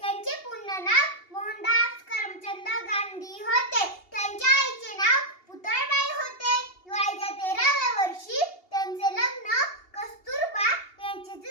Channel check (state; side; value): late; right; 2.8 ms